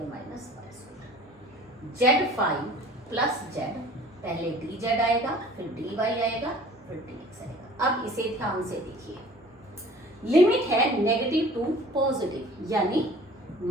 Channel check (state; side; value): normal; both; correlation 0.47